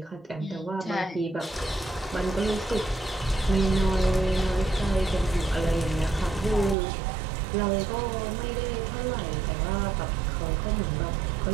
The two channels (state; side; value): drops out; left; at 6.8 s